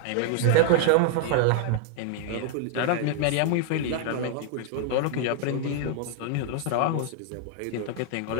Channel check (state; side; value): different; both; correlation 0.00